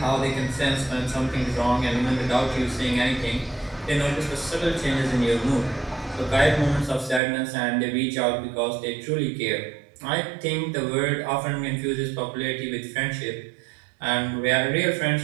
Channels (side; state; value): left; drops out; at 7.2 s